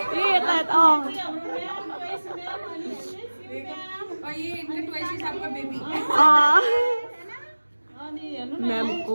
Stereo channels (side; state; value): both; inverted; correlation -1.00